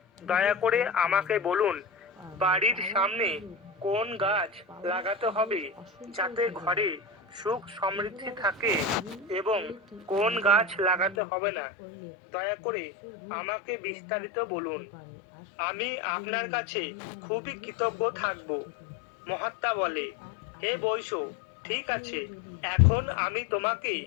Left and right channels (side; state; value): right; drops out; at 11.2 s